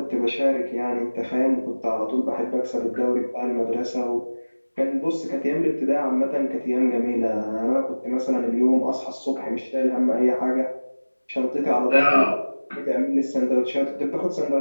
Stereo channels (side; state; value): both; inverted; correlation -1.00